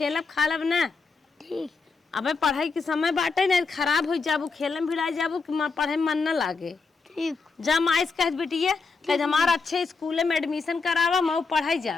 खालब ना। ठीक। अबे पढ़ाई के समय बाटे ना, खराब हो जाबू, खेलम भिड़ा जाबू कि पढ़े में मन न लागे। ठीक। जा माई से कह बिटिया कह हमारा अच्छे स्कूल में एडमिशन करावा, मैं पढ़ाई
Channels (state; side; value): quieter; right; 4.5 dB